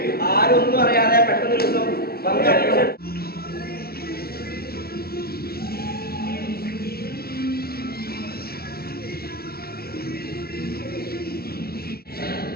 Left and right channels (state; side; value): late; right; 0.45 ms